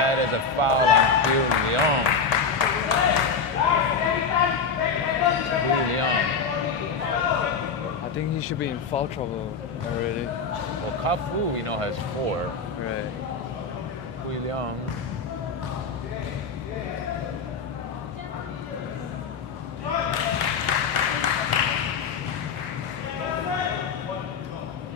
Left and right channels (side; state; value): right; quieter; 5.3 dB